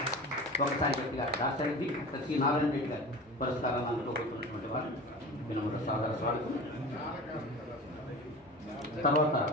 ఒకసారి గట్టిగా దాసరెడ్డి శ్రీ నారాయణ రెడ్డి గారు పురస్కారాన్ని అందుకోబోతున్నటువంటి వారు వినమ్ర సాదర స్వాగతం. తర్వాత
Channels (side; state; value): both; normal; correlation 0.34